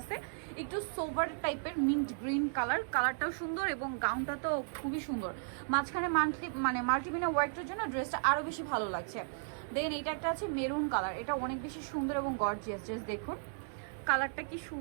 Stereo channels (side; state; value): left; silent; 54 dB below the other